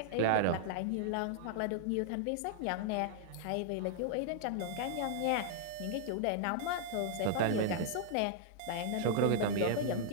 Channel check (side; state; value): both; different; correlation -0.01